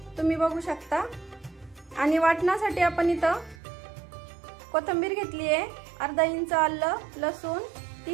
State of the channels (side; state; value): left; drops out; at 3.6 s